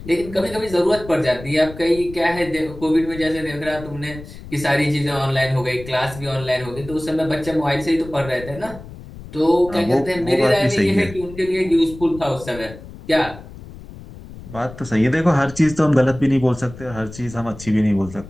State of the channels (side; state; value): left; noise; rumble, 15 dB below the sound